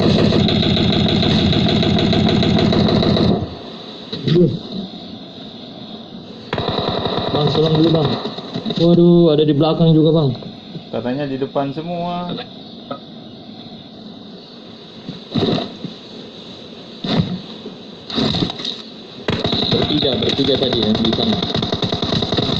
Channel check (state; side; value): identical; both; correlation 1.00